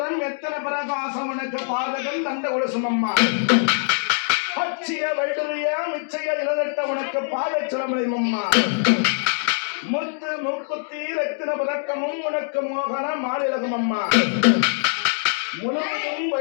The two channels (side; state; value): right; silent; digital silence